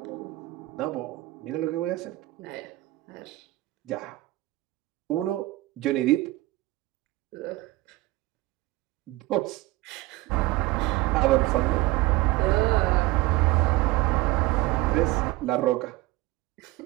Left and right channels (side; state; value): left; quieter; 18.9 dB